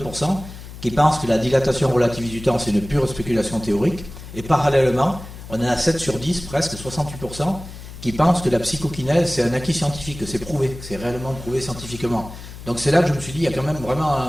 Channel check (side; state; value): left; noise; hum, 14 dB below the sound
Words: qui pense que la dilatation relativiste du temps c'est une pure spéculation théorique, et parallèlement, on en a 7 sur 10, presque 68%, qui pensent que la psychokinèse c'est un acquis scientifique, que c'est prouvé, que c'est réellement prouvé scientifiquement. Donc c'est là que je me suis dit, il y a quand même vraiment